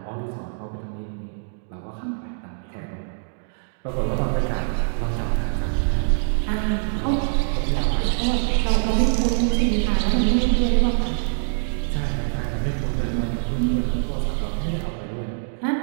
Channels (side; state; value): left; silent; digital silence